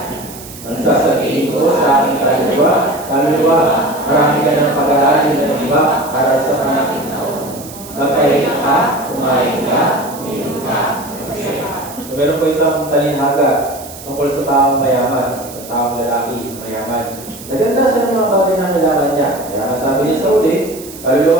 Ang sasabihin ko sa aking kaluluwa, marami ka ng pag-aaral na iba para sa mga magpahinga ka, kumain ka, uminom ka, masaya ka. So meron po isang talinhaga tungkol sa taong mayaman, sa taong lalaki mayaman. Naganda siya ng mga bagay na kailangan niya. Kaya nga sabi niya sa uli,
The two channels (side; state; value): right; noise; hiss, 16 dB below the sound